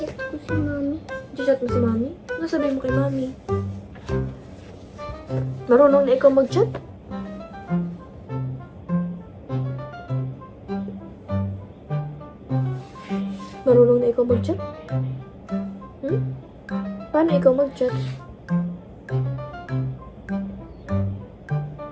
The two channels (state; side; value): identical; both; correlation 1.00